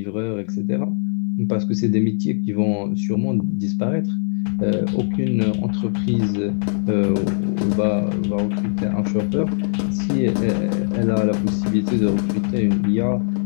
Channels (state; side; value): silent; right; 59 dB below the other